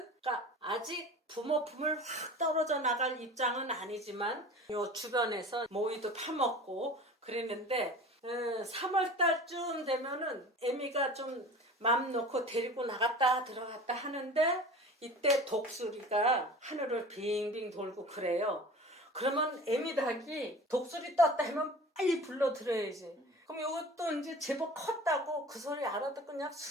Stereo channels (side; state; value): both; normal; correlation 0.39